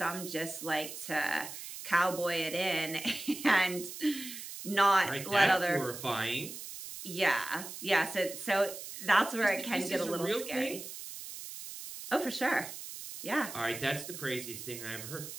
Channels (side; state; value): right; noise; hiss, 10 dB below the sound